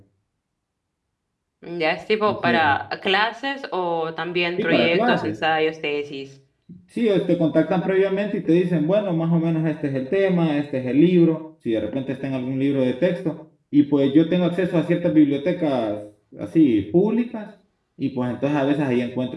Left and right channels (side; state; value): both; identical; correlation 1.00